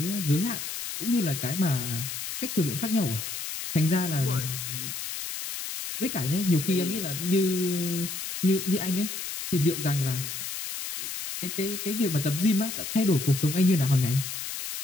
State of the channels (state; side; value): noise; left; hiss, 6 dB below the sound